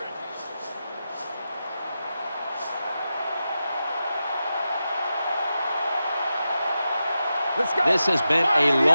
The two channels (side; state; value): both; inverted; correlation -0.90